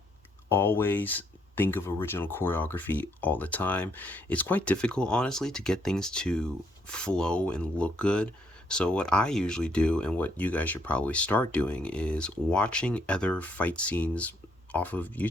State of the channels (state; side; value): normal; both; correlation 0.71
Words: always think of original choreography all the time. It's quite difficult, honestly, to get things to flow and look good. So what I usually do, and what you guys should probably start doing, is watching other fight scenes off of